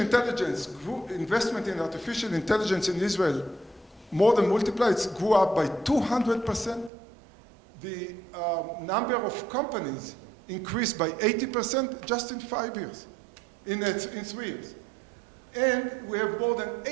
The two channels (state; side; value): drops out; left; at 6.9 s